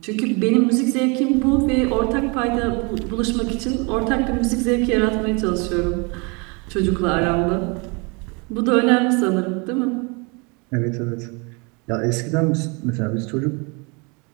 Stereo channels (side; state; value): left; quieter; 30.7 dB